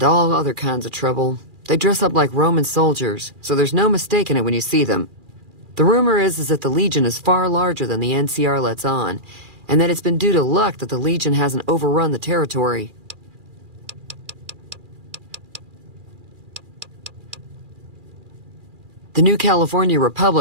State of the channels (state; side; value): late; left; 2.4 ms